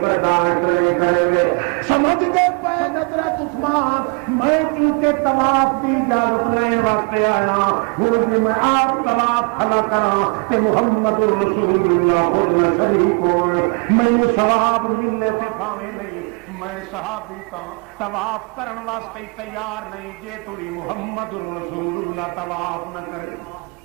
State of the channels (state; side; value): quieter; left; 33.2 dB